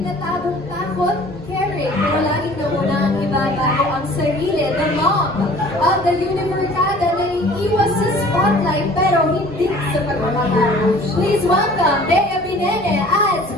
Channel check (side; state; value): both; normal; correlation 0.48